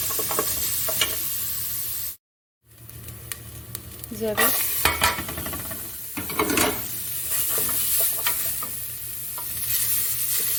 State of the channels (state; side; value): normal; both; correlation 0.96